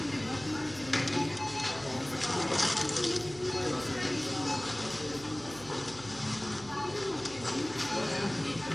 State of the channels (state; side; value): noise; right; hum, 18 dB below the sound